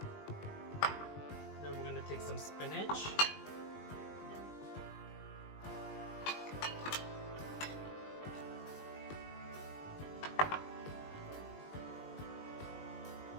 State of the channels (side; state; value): right; late; 20 ms